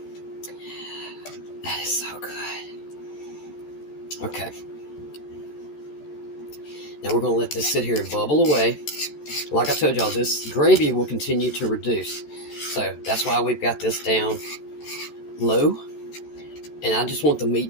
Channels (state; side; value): late; right; 14 ms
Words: That is so good. Okay. Now we're going to let this sit here and bubble away. Like I told y'all, this gravy will continue to reduce. So that's why we've got this down low. And I just want the